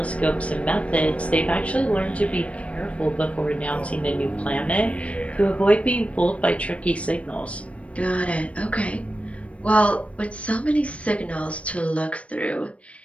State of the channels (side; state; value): right; late; 0.063 ms